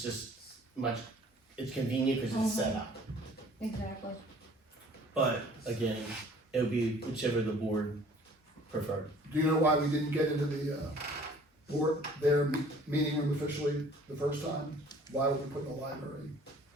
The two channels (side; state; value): both; normal; correlation 0.53